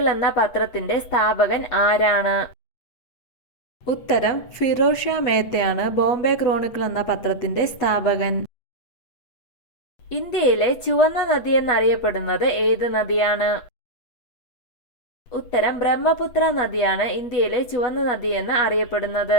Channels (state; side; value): late; right; 8.3 ms